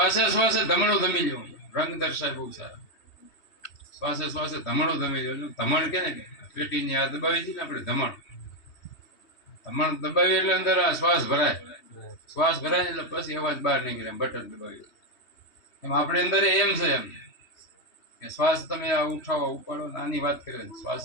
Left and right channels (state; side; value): late; right; 3.2 ms